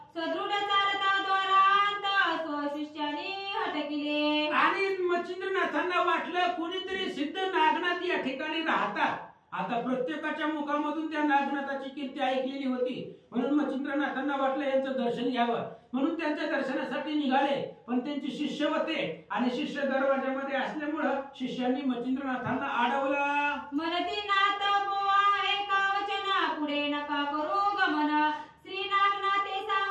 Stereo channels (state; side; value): identical; both; correlation 1.00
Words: सदृढ चालता द्वारांत स्वशिष्यानी हटकिले. आणि मचिंद्रनाथांना वाटलं कोणीतरी सिद्ध नागनाथ या ठिकाणी राहतात. आता प्रत्येकाच्या मुखामधून त्या नागनाथाची कीर्ती ऐकलेली होती, म्हणून मचिंद्रनाथांना वाटलं यांचं दर्शन घ्यावं. म्हणून त्यांच्या दर्शनासाठी निघाले, पण त्यांचे शिष्य होते आणि शिष्य दरवाजामध्ये असल्यामुळं शिष्यांनी मचिंद्रनाथांना अडवलं. म्हणती नाथ बोवा एका वचना पुढे नका करू गमन श्री नागनाथे